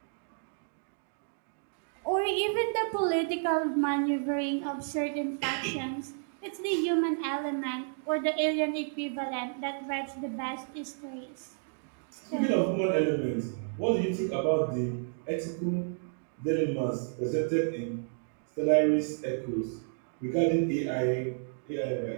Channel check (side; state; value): left; silent; digital silence